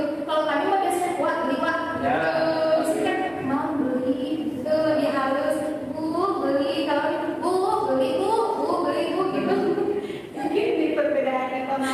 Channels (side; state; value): both; identical; correlation 1.00